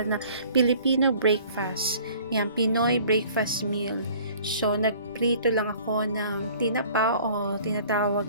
na Filipino breakfast. Yan, Pinoy breakfast meal. So, nagprito lang ako ng tinapa o tinatawag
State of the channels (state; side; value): inverted; both; correlation -0.51